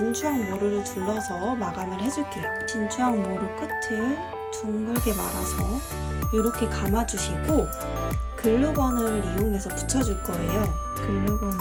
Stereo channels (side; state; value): both; identical; correlation 1.00